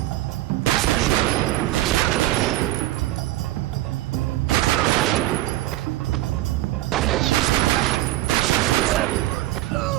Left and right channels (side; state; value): left; quieter; 16.2 dB